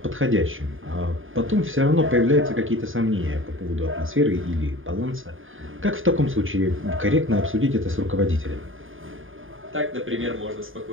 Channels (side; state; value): left; late; 0.59 ms